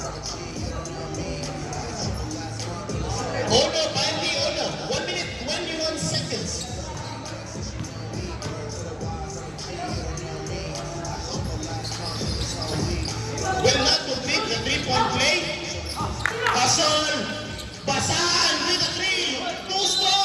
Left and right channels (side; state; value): both; identical; correlation 1.00